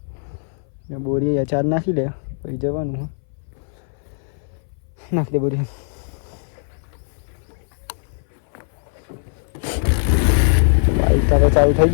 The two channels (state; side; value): silent; right; 60 dB below the other